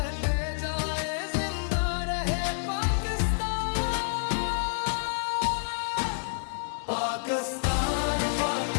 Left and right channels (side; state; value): right; silent; 59 dB below the other